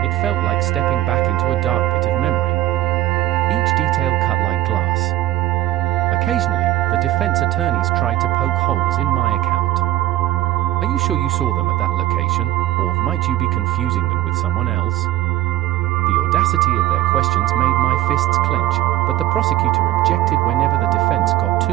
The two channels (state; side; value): quieter; left; 14.6 dB